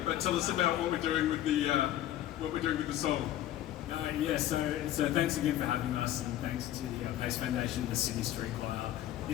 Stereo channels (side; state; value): right; quieter; 13.0 dB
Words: but tell us about what we're doing with the song. So thanks again for having us, and thanks to the Pace Foundation and the Sydney Street Choir.